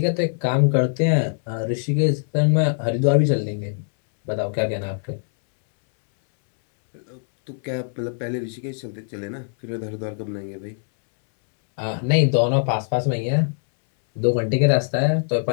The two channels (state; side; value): silent; right; 64 dB below the other